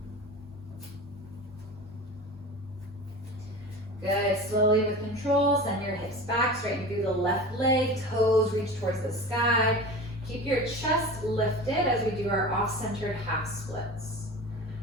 Good, slowly with control, send your hips back, straighten through the left leg, toes reach towards the sky. Keep your chest lifted as we do our off-centered half splits.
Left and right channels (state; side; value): normal; both; correlation 0.33